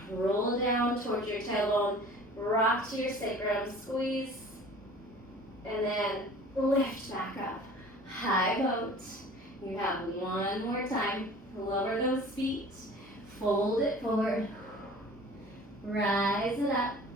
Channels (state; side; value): normal; both; correlation 0.45